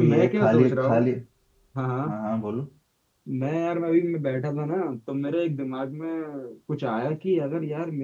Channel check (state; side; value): identical; both; correlation 1.00